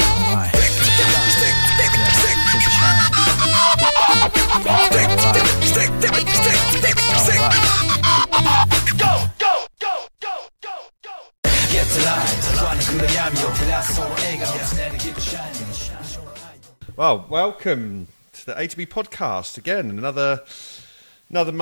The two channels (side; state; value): both; inverted; correlation -1.00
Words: welcome to the A to B podcast again. Another